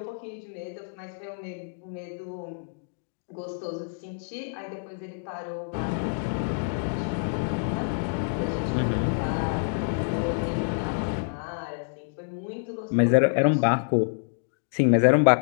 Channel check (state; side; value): silent; right; digital silence